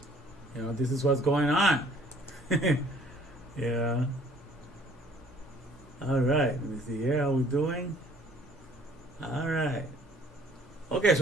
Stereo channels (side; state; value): both; normal; correlation 0.57